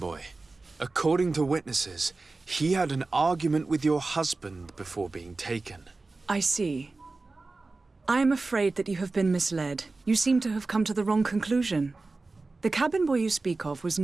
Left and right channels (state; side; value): quieter; left; 3.5 dB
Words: According to witnesses, he had an argument with your husband before being taken. I see. I am afraid that you have been misled. You seem to have come to the wrong conclusion. The cabin boy you speak of was